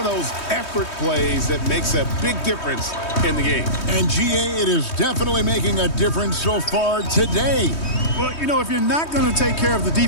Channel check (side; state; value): right; late; 3.2 ms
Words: those effort plays that makes a big difference in the game. And GA, it is definitely making a difference so far today. Well, you know, if you're not going to take care of the